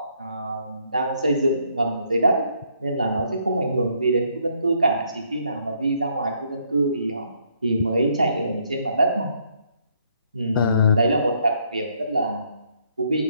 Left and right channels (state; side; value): inverted; both; correlation -0.70